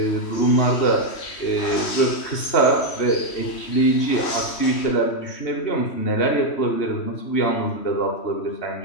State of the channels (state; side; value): late; right; 3.1 ms